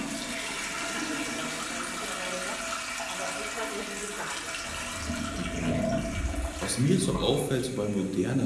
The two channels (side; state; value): both; identical; correlation 1.00